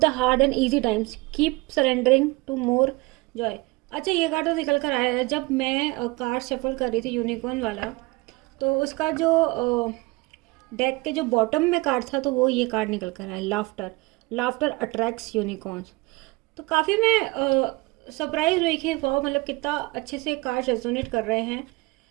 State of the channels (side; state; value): left; quieter; 23.7 dB